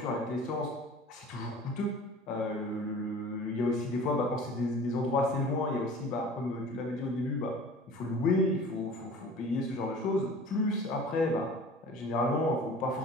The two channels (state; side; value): normal; both; correlation 0.43